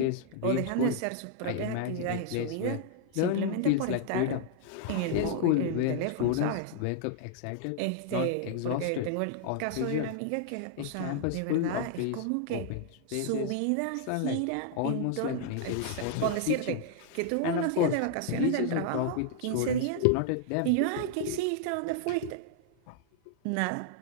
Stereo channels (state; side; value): different; both; correlation 0.00